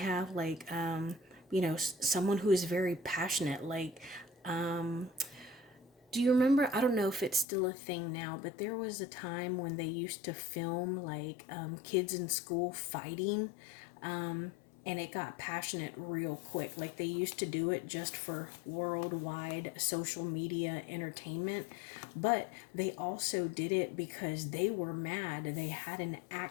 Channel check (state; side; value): drops out; right; at 7.5 s